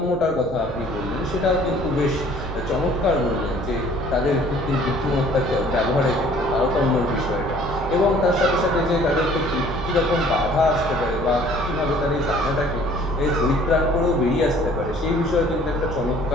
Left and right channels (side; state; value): right; noise; rumble, 13 dB below the sound